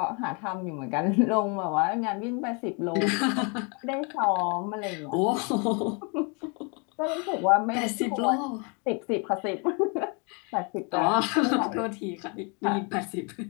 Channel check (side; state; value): right; quieter; 34.2 dB